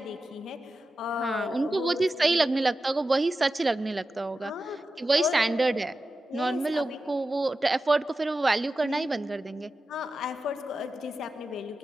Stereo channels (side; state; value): both; normal; correlation 0.92